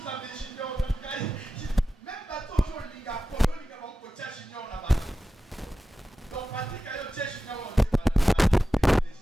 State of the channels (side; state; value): both; normal; correlation 0.94